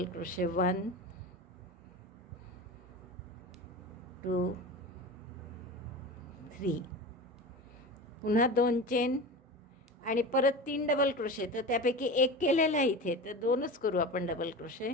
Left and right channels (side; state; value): both; normal; correlation 0.29